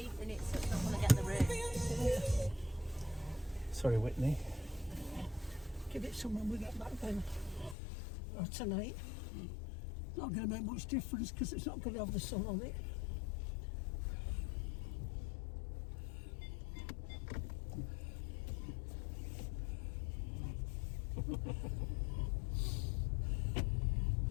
in it, so it's not going to get the rain. Sorry, Whitney. Give it some when we get back then. Or tonight. Not going to make much difference because it's not going to have the sun on it.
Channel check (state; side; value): drops out; right; at 7.8 s